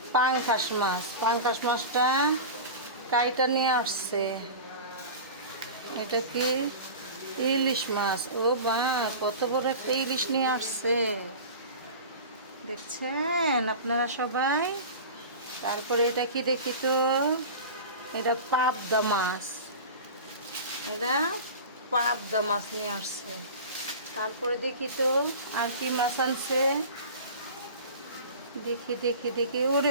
পাঙ্কাশ মাছ। পাঙ্কাশ মাছটা কাইটা নিয়ে আসছে। এটা কি ইলিশ মাছ। ও বা, কত বড় একটা ইলিশ নিয়ে আসছে, দেখছেন আপনারা সবাই। তারপরে এটা কি দেখি তো, এটা পাবদা মাছ, এটা পাবদা মাছ নিয়ে আসছে। তারপরে দেখি তো আর কি মাছ আনছে, দেখি দেখি দেখি। ওরে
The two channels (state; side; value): inverted; both; correlation -0.33